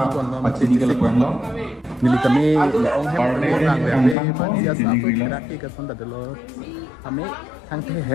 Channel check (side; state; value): right; drops out; at 4.2 s